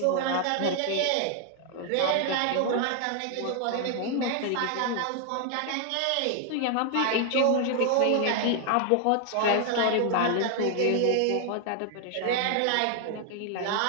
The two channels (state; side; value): different; both; correlation 0.00